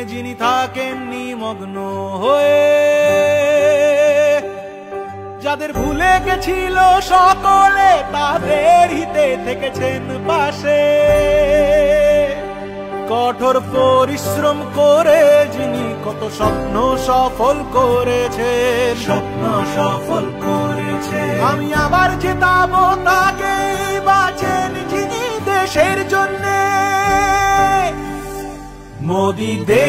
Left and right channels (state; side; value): identical; both; correlation 1.00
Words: যিনি থাকেন নিমগ্ন হয়ে, যাদের ভুলে গেছিল সকলে তাদের হিতে থেকেছেন পাশে। কঠোর পরিশ্রম করে যিনি কত স্বপ্ন সফল করেছেন, স্বপ্ন সফল করেছেন। আমি আবার জেতাবো তাকে, বাঁচেন যিনি দেশের জন্যে। মোদি